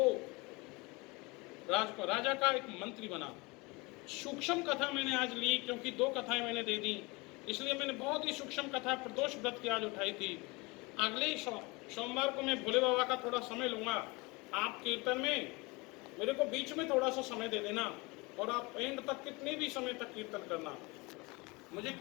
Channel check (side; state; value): right; quieter; 25.6 dB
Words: राजा का एक मंत्री बना। सूक्ष्म कथा मैंने आज ली क्योंकि 2 कथाएं मैंने दे दी, इसलिए मैंने बहुत ही सूक्ष्म कथा प्रदोष व्रत की आज उठाई थी। अगले सोमवार को मैं भोले बाबा का थोड़ा समय लूंगा। आप कीर्तन में मेरे को बीच में थोड़ा सा समय दे देना और आप एंड तक कितने भी समय तक कीर्तन करना मुझे,